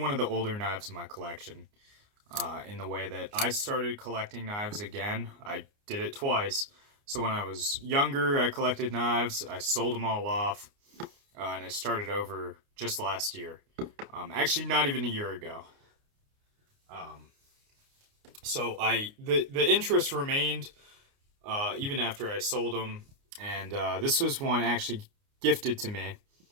of the older knives in my collection. In the way that I started collecting knives again, I did it twice. So when I was younger, I collected knives. I sold them all off, and I started over just last year. Actually, not even a year ago. Um, the interest remained even after I sold them, and this was one actually gifted to me.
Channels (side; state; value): left; late; 29 ms